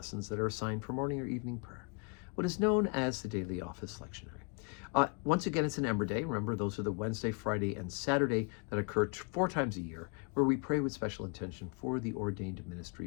that are assigned for morning or evening prayer, what is known as the Daily Office Lectionary. Once again, it's an Ember Day. Remember, those are the Wednesday, Friday, and Saturday that occur 4 times a year, where we pray with special intention for the ordained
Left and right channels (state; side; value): quieter; right; 34.2 dB